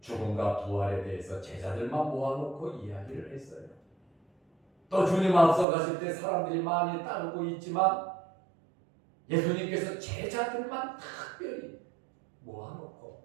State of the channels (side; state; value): left; drops out; at 5.7 s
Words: 죽음과 부활에 대해서 제자들만 모아놓고 이야기를 했어요. 또 주님 앞서 가실 때 사람들이 많이 따르고 있지만 예수님께서 제자들만 특별히